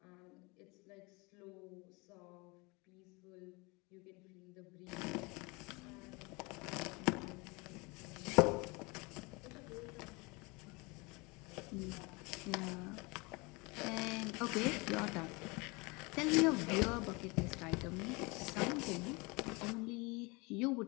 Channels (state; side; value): quieter; right; 27.0 dB